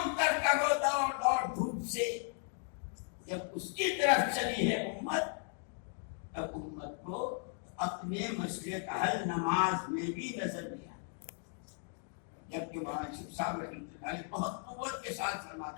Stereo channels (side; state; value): right; silent; 54 dB below the other